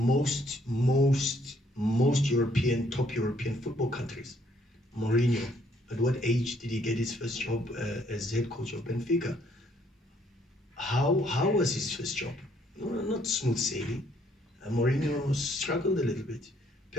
European, top European football countries. Mourinho, at what age did he get his first job as head coach of Benfica? How was his first job? No, not smooth sailing. Mourinho struggled a little bit.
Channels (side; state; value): both; normal; correlation 0.66